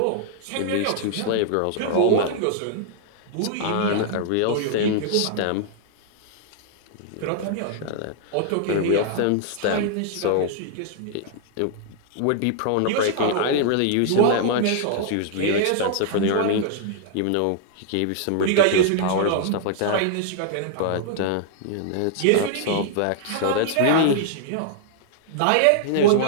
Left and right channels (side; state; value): both; different; correlation -0.01